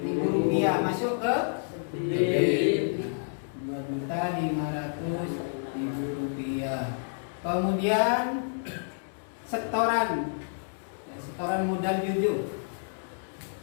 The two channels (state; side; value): silent; right; 58 dB below the other